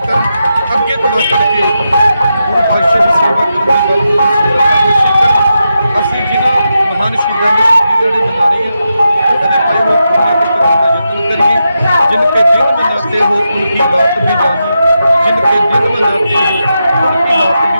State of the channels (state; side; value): inverted; both; correlation -0.87